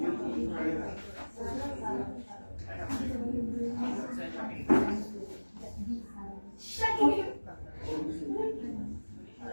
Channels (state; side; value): inverted; both; correlation -1.00